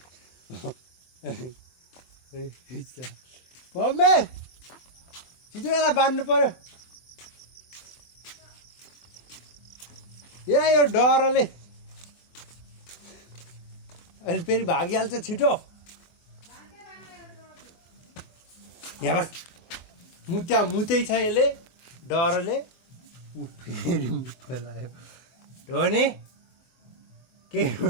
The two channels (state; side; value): late; right; 24 ms